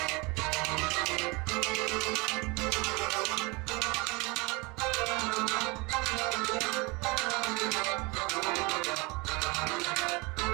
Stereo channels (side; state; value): left; quieter; 26.5 dB